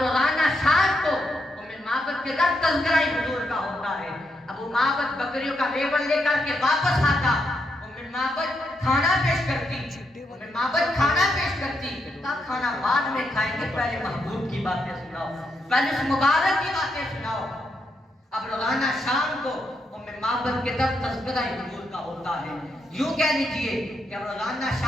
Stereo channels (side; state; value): both; normal; correlation 0.81